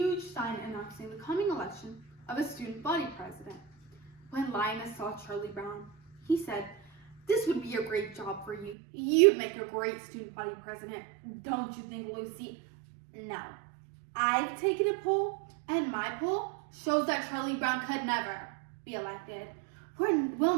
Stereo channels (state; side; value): drops out; left; at 8.8 s